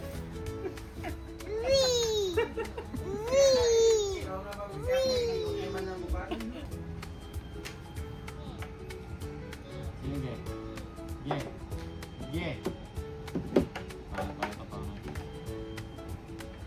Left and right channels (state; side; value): identical; both; correlation 1.00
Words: Sige. Paano ba ito pa?